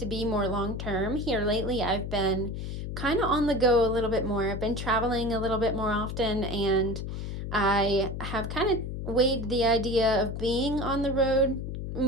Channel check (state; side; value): noise; left; hum, 5 dB below the sound